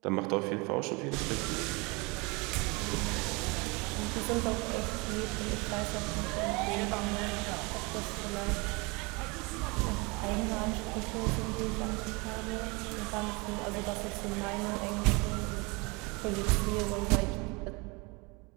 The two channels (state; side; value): quieter; left; 27.6 dB